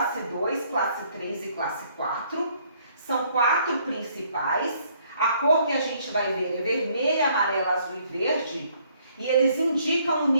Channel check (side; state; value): both; inverted; correlation -0.65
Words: 2, classe 3 e classe 4. São 4 principais. A cor que a gente vai ver é vermelha, amarela, azul e verde. E eles indicam o